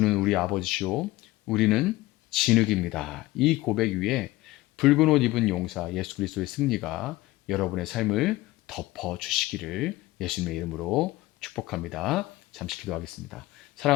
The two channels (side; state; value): right; quieter; 18.5 dB